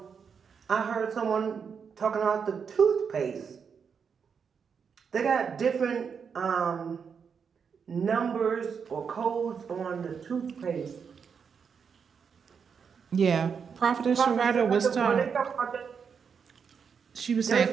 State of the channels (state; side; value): quieter; left; 6.4 dB